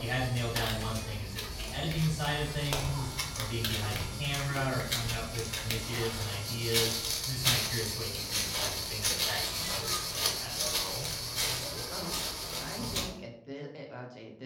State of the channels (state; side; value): identical; both; correlation 1.00